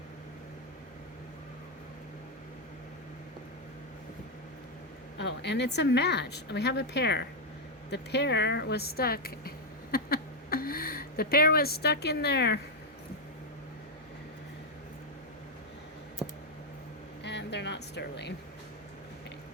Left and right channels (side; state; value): both; normal; correlation 0.00